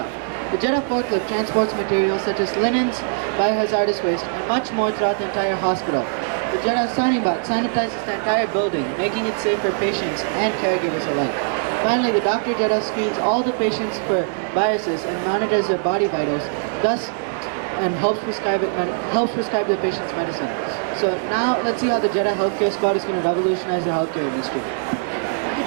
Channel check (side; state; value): left; silent; digital silence